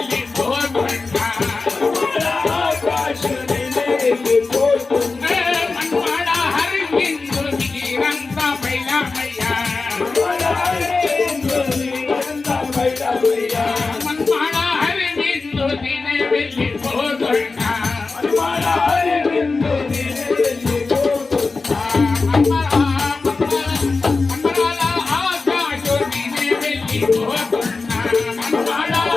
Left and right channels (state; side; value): quieter; right; 4.0 dB